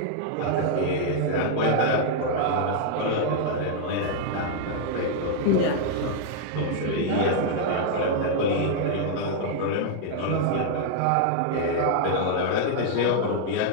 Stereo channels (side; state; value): both; different; correlation -0.01